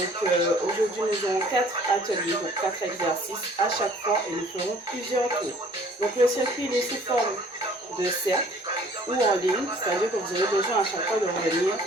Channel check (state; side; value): normal; both; correlation 0.54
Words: aujourd'hui, nous aurons 4 ateliers, donc 4 exercices à chaque fois et nous ferons plusieurs tours. Donc, le circuit il est sous forme de cercle ou en ligne, c'est-à-dire que vous aurez besoin à chaque fois de revenir